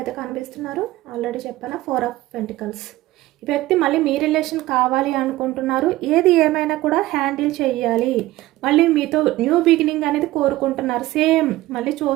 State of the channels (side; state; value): left; quieter; 17.1 dB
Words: కనిపిస్తున్నారు. ఆల్రెడీ చెప్పాను 4 ఆఫ్ పెంటికల్స్. ఈ వ్యక్తి మళ్ళీ మీ రిలేషన్ కావాలి అనుకుంటున్నారు. ఏది ఏమైనా కూడా హ్యాండిల్ చేయాలి, మళ్ళీ మీతో న్యూ బిగినింగ్ అనేది కోరుకుంటున్నారు. సేమ్ మళ్ళీ